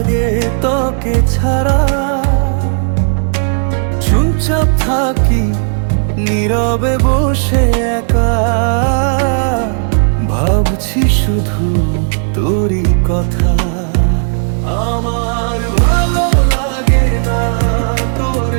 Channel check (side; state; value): left; silent; digital silence